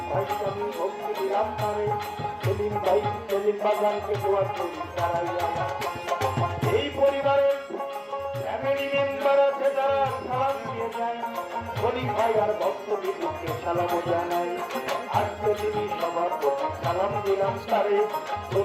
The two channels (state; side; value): identical; both; correlation 1.00